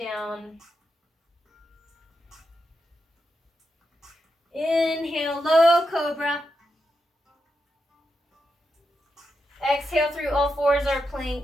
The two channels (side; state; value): both; normal; correlation 0.86